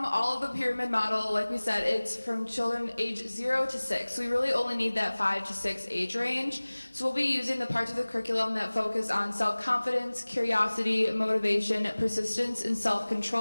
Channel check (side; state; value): both; inverted; correlation -1.00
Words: all of the pyramid model, like we said, it's from children age 0 to 6. We really only need that 5 to 6 age range. So we'll be using the parts of the curriculum that focus on self-confidence, curiosity, motivation, persistence, and